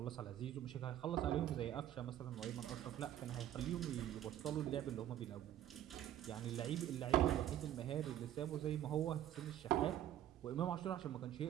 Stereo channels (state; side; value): quieter; left; 11.9 dB